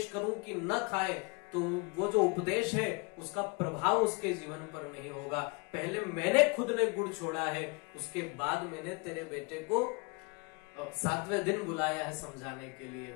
करूं कि न खाए, तो वो जो उपदेश है उसका प्रभाव उसके जीवन पर नहीं होगा। पहले मैंने खुद ने गुड़ छोड़ा है, उसके बाद मैंने तेरे बेटे को 7वें दिन बुलाया है समझाने के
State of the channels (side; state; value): right; quieter; 30.0 dB